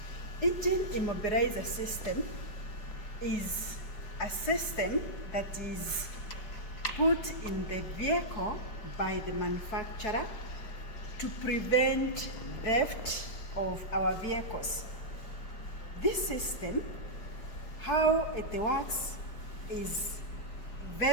Immobiliser system is a system that is put in the vehicle by the manufacturer to prevent theft of our vehicles. This system, how it works, is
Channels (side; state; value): right; late; 5.1 ms